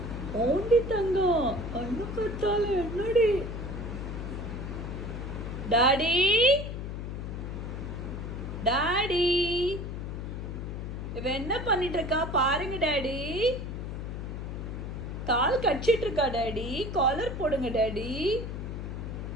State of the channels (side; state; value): left; noise; hum, 6 dB below the sound